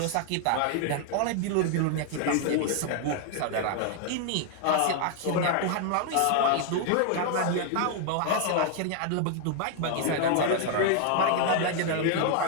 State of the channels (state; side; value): different; both; correlation 0.00